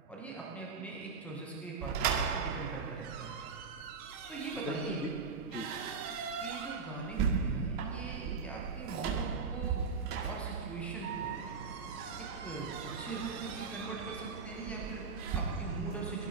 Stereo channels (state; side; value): quieter; left; 5.1 dB